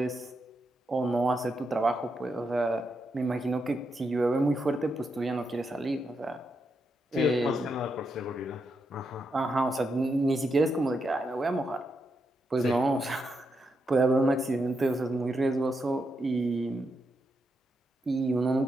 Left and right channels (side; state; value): both; normal; correlation 0.83